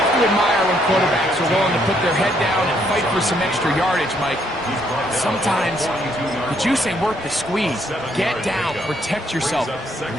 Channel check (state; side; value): normal; both; correlation 0.71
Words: to admire when quarterbacks are willing to put their head down and fight for some extra yardage, Mike. Sometimes the juice ain't worth the squeeze. Get down. Protect yourself.